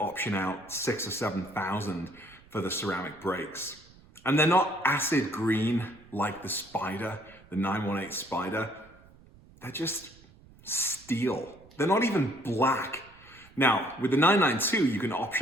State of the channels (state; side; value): noise; right; rumble, 25 dB below the sound